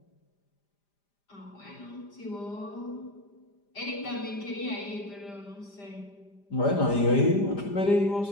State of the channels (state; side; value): late; right; 5.0 ms